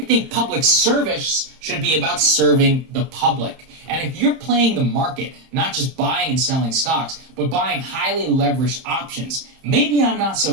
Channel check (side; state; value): left; late; 31 ms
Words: think public service should be about serving the public. And if you're playing the market, not just buying and selling stocks, but buying highly leveraged options, maybe I'm not so